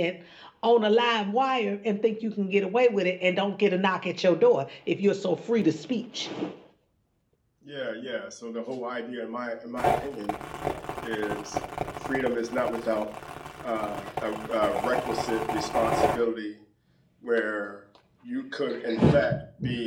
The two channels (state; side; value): identical; both; correlation 1.00